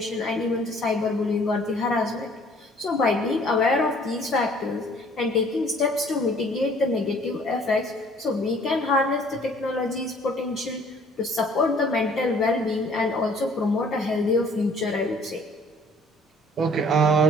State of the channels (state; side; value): normal; both; correlation 0.56